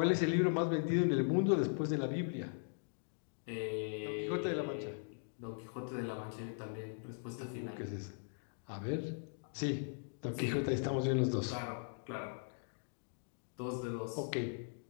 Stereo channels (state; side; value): silent; right; digital silence